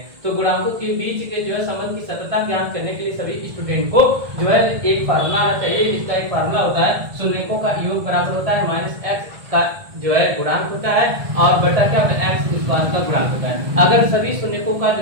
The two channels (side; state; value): left; late; 1.7 ms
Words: तो गुणांकों के बीच के जो है संबंध की सत्यता की जांच करने के लिए सभी स्टूडेंट को जो है एक फार्मूला आना चाहिए। इसका एक फार्मूला होता है शून्यों का योग बराबर होता है -x का जो है गुणांक होता है और बटा क्या होता है x स्क्वायर का गुणांक होता है। अगर सभी शून्यों का